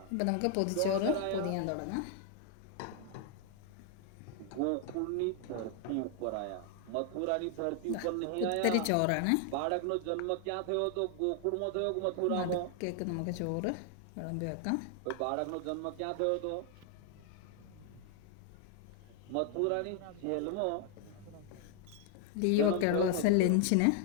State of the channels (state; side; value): different; both; correlation 0.00